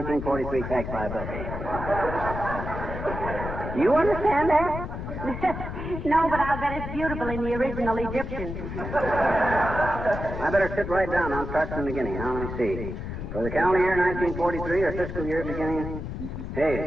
tax liability. You understand that? No, but I'll bet it's beautiful in the original Egyptian. I better sit right down. I'll start from the beginning. Now, let me see. For the calendar year 1943 or fiscal year beginning...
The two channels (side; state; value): left; noise; rumble, 6 dB below the sound